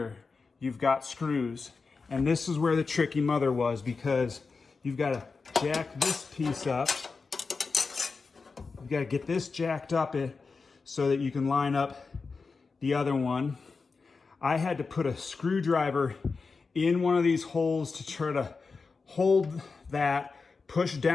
you've got screws. And this is where the tricky mother was, because you've got to jack this piece up. You've got to get this jacked up so that you can line up the other one. I had to put a screwdriver in one of these holes to try to hold that, push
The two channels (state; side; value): quieter; right; 4.5 dB